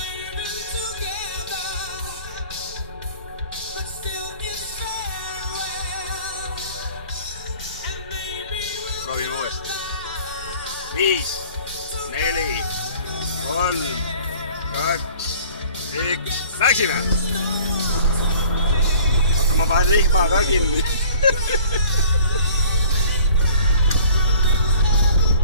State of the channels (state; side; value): inverted; both; correlation -0.50